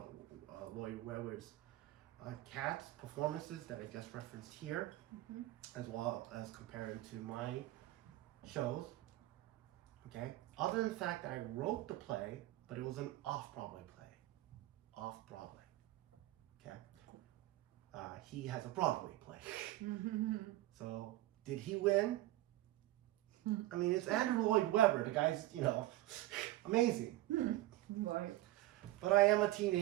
Webber's Cats performances that I just referenced here, as well as comparing to my shows. Okay. Other than the fact that I wrote the play, but it was an off-Broadway play. Off-Broadway. Okay. He has a Broadway play. So, did he win? I mean, it's Andrew Lloyd Webber. The guy's, amazing. Right. But I am a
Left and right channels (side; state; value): left; quieter; 16.4 dB